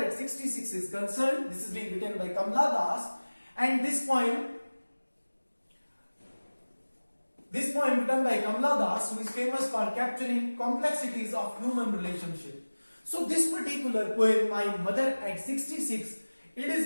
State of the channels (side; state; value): both; inverted; correlation -1.00